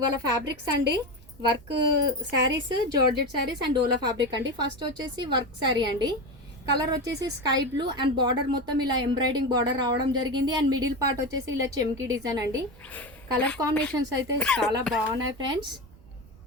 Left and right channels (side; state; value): right; noise; rumble, 23 dB below the sound